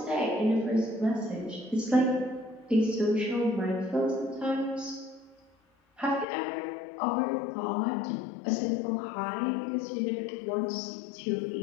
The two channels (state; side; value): drops out; right; at 6.2 s